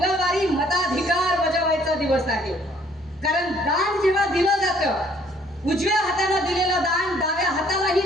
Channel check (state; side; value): normal; both; correlation 0.62